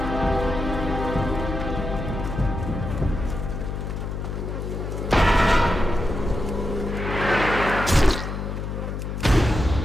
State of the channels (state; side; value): noise; left; hum, 5 dB below the sound